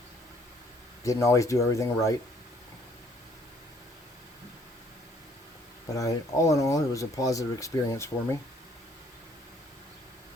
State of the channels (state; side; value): normal; both; correlation 0.62